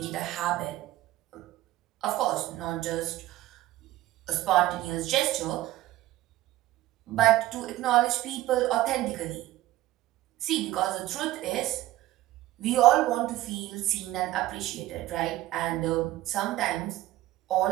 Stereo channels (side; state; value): left; quieter; 15.9 dB